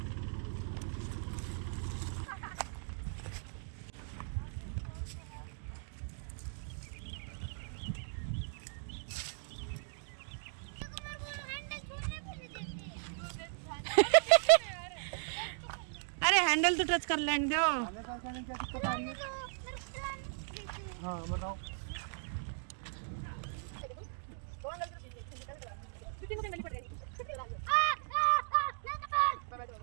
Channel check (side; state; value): left; silent; digital silence